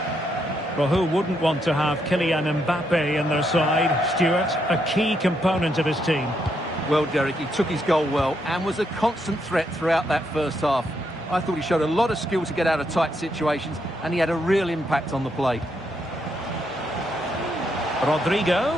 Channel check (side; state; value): both; normal; correlation 0.78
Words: Well, who wouldn't want to have Kylian Mbappe in their side? Stuart, a key component of his team. Well, Derek, he took his goal well and was a constant threat throughout that first half. I thought he showed a lot of skill to get out of tight situations, and he had a real impact on the play. Rodrigo.